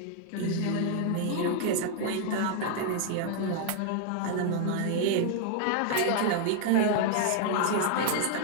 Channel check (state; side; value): different; both; correlation 0.00